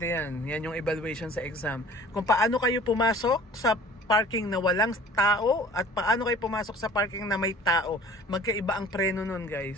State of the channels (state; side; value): normal; both; correlation 0.47